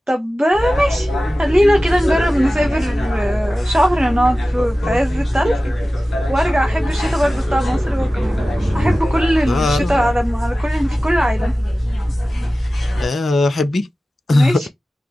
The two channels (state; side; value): normal; both; correlation 0.96